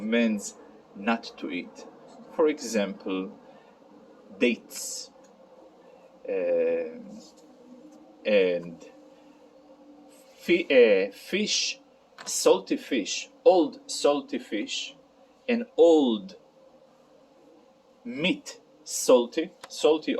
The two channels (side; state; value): both; identical; correlation 1.00